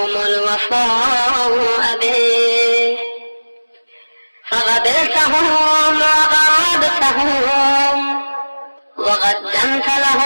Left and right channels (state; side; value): inverted; both; correlation -1.00